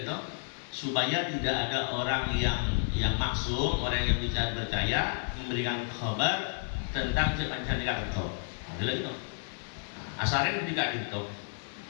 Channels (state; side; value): silent; right; 57 dB below the other